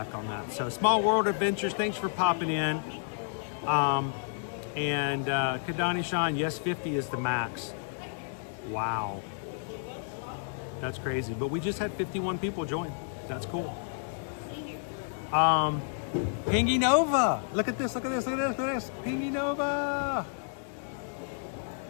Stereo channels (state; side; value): silent; right; digital silence